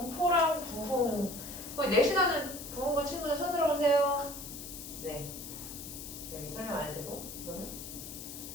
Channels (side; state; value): left; noise; hiss, 10 dB below the sound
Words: 부흥. 거기 내신하는 부흥고 친구들 손 들어보세요. 네. 여기 설명 안 해도 되고. 그러면